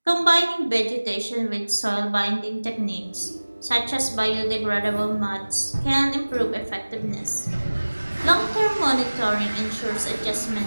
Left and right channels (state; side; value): inverted; both; correlation -1.00